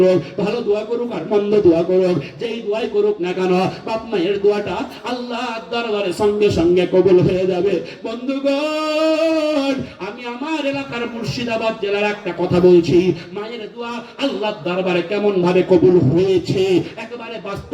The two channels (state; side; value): identical; both; correlation 1.00